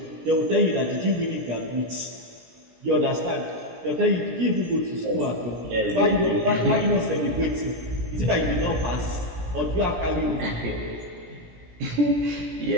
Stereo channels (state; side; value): late; left; 17 ms